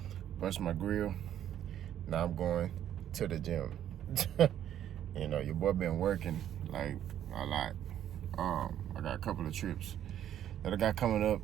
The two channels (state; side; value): quieter; left; 10.8 dB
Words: brushed my grill. Now I'm going to the gym. You know, your boy been working, like, a lot. I got a couple of trips that I got coming